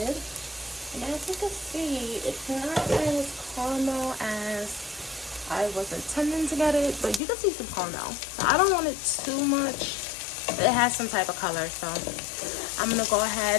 And as you can see, it's not as caramel as I was intending to get it, but you can see some caramel. So I don't want it too much. It has some type of color, so I'm going to go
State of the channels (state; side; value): drops out; right; at 7.2 s